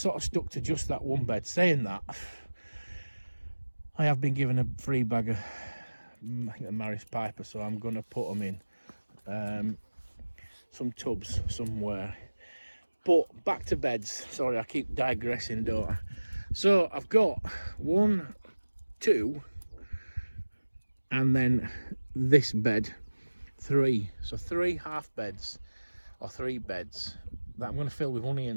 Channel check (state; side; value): inverted; both; correlation -1.00